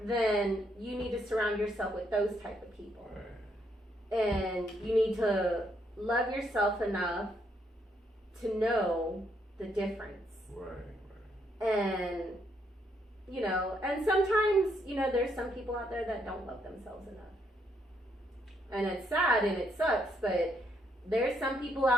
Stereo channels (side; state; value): both; normal; correlation 0.74